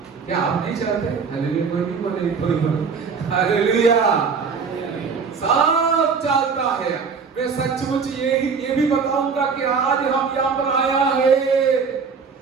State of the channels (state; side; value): quieter; left; 5.5 dB